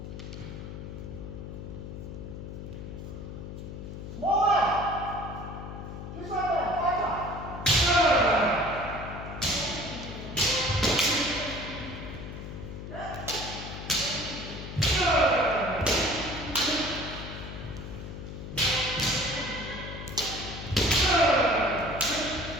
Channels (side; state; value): left; noise; hum, 9 dB below the sound